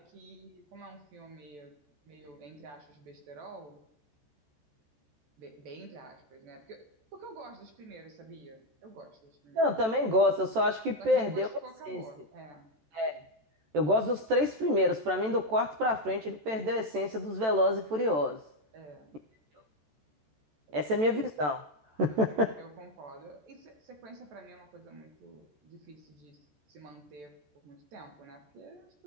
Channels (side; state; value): left; late; 14 ms